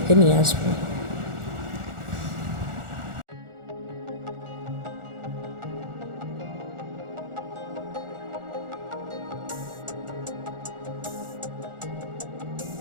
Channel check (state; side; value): late; left; 1.4 ms